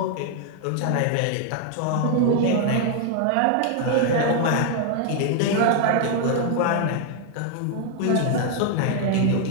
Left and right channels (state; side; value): different; both; correlation 0.00